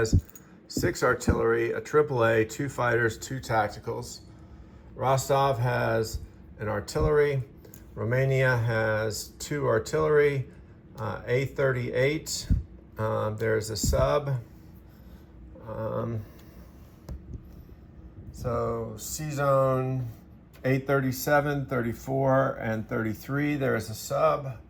6 artillery, a AAA, 2 fighters, 2 tacticals. Rostov has an artillery. Romania has 2 artillery, A38. There's a sub. So C-Zone 837, 34, and 33. There is a sub.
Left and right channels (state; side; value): identical; both; correlation 1.00